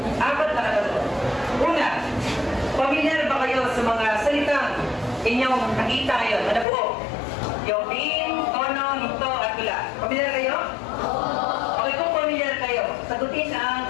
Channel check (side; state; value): right; drops out; at 6.7 s